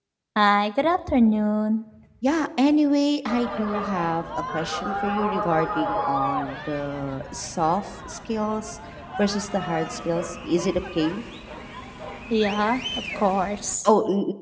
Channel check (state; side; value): identical; both; correlation 1.00